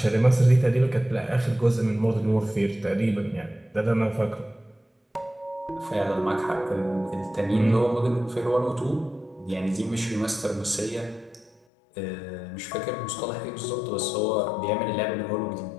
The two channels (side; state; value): right; drops out; at 11.6 s